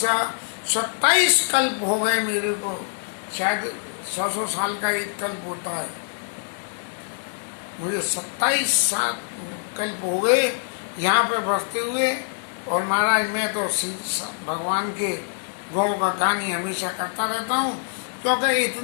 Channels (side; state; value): right; silent; digital silence